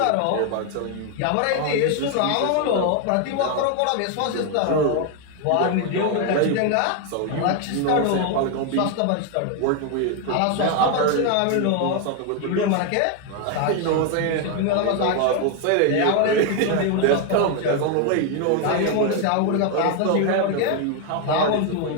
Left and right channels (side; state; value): both; different; correlation 0.01